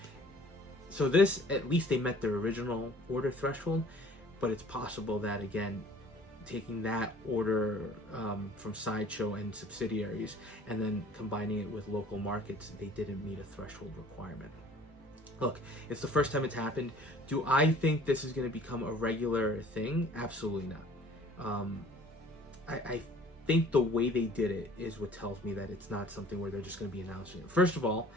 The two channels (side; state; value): both; normal; correlation 0.51